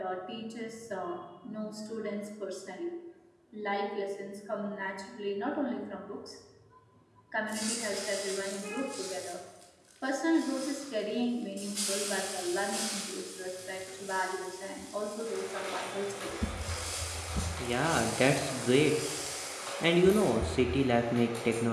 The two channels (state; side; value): identical; both; correlation 1.00